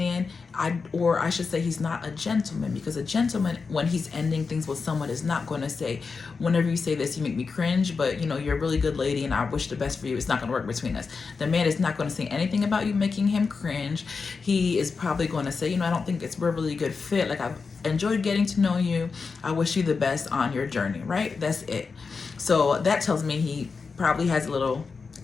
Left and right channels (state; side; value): quieter; right; 4.9 dB